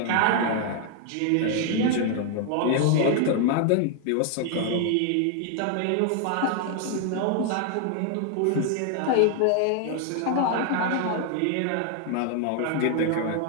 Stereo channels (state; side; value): different; both; correlation 0.00